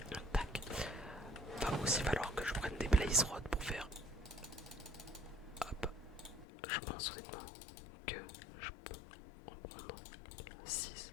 Tac. Va aussi falloir que je prenne des blaze rods pour faire. Hop. Je pense honnêtement que je peux en prendre 6.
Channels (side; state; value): right; drops out; at 6.5 s